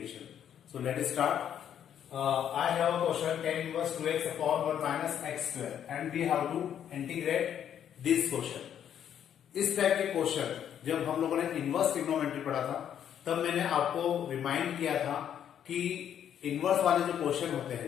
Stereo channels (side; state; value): right; quieter; 9.5 dB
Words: So let us start. I have a question tan inverse 2x upon 1 minus x square and we have to integrate this question. इस type के question जब हम लोगों ने inverse trigonometry पढ़ा था तब मैंने आपको रिमाइंड किया था कि इनवर्स वाले जो क्वेश्चन होते